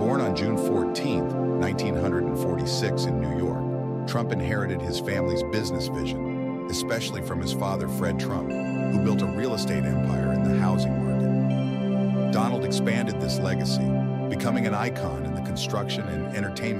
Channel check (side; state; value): both; identical; correlation 1.00